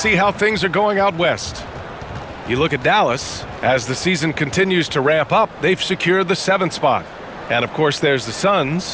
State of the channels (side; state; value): both; identical; correlation 1.00